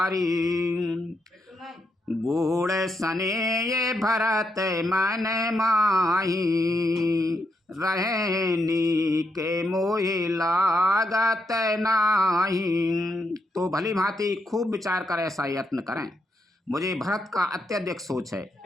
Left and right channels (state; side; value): normal; both; correlation 0.81